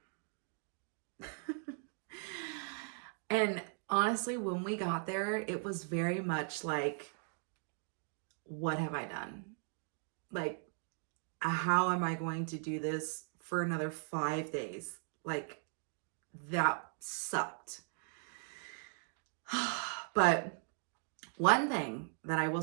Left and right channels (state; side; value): silent; left; 52 dB below the other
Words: And honestly, when we got there, it was very much like, what have I done? Like, how am I going to do this for another 5 days? Like, that sucked. But one thing that I will